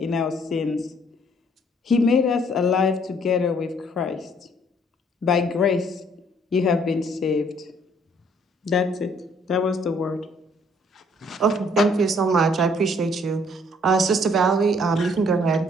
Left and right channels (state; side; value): normal; both; correlation 0.63